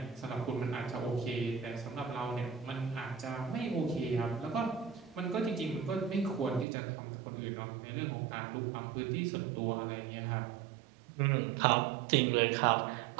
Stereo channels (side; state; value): left; drops out; at 6.7 s